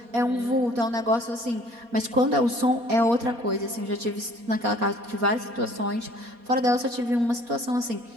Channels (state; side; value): late; left; 4.2 ms